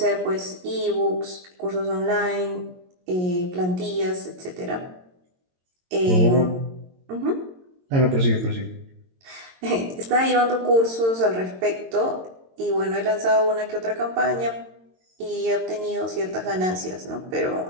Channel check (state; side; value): late; left; 22 ms